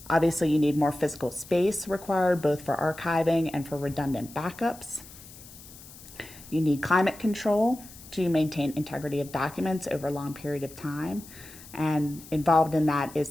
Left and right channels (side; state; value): left; noise; hiss, 18 dB below the sound